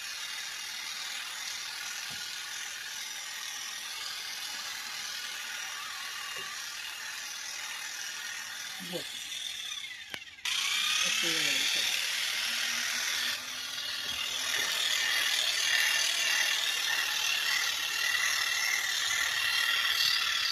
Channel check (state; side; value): identical; both; correlation 1.00